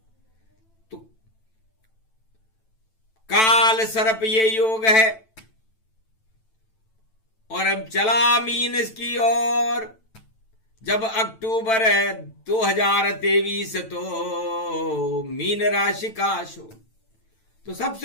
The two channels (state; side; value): late; right; 9.0 ms